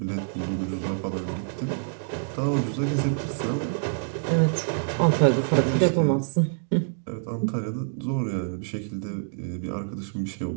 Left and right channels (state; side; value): silent; left; digital silence